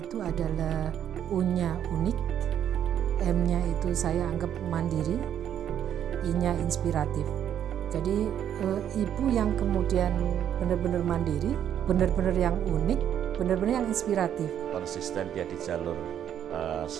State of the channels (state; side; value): quieter; left; 9.8 dB